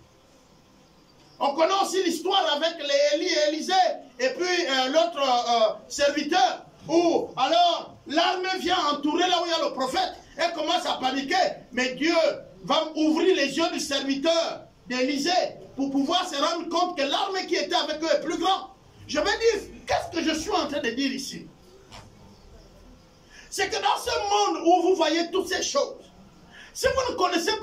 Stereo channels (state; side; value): identical; both; correlation 1.00